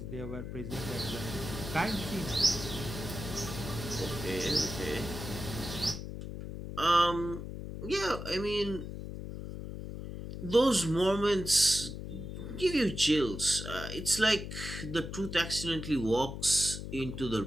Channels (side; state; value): left; noise; hum, 8 dB below the sound